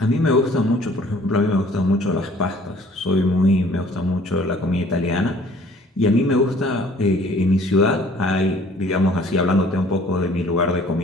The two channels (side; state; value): both; normal; correlation 0.55